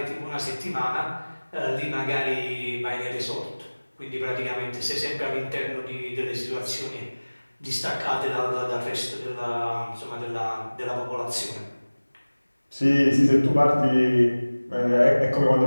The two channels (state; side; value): inverted; both; correlation -1.00